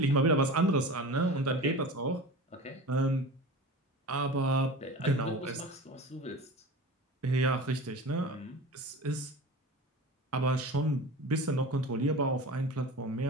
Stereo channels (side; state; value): both; normal; correlation 0.34